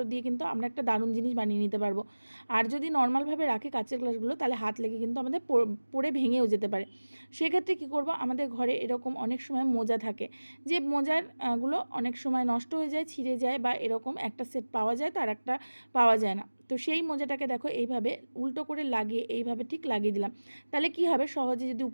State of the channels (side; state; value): both; inverted; correlation -1.00